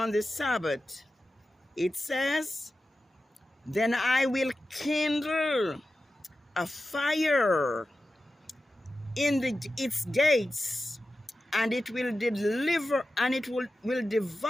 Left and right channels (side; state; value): both; normal; correlation 0.93